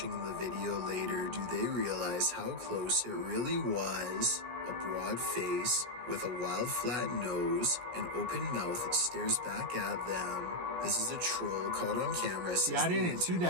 the video later do they realize how close it really was. A broad face with a wild flat nose and open mouth stares back at them. This is a troll caught on camera. I didn't see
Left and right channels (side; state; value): left; late; 17 ms